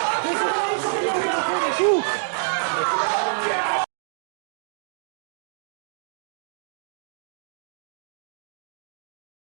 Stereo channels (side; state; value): left; silent; digital silence